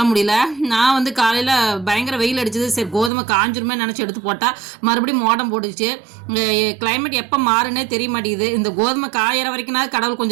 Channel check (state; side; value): drops out; left; at 3.1 s